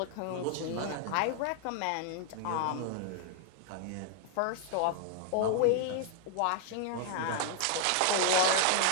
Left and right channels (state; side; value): different; both; correlation 0.00